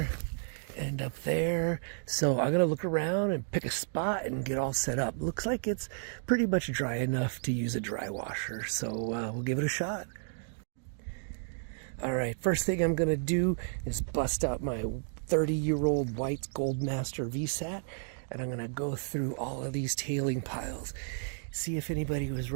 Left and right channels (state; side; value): silent; left; digital silence